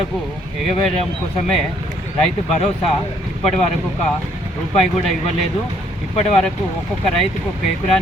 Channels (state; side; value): normal; both; correlation 0.67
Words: ఎగవేయడం కోసమే రైతు భరోసా ఇప్పటి వరకు ₹1 కూడా ఇవ్వలేదు. ఇప్పటి వరకు ఒక్కొక్క రైతుకు ఒక